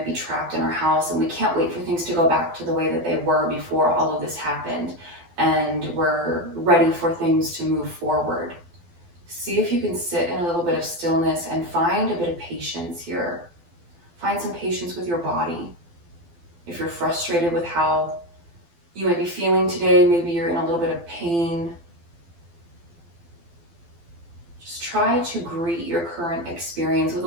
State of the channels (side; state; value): left; late; 12 ms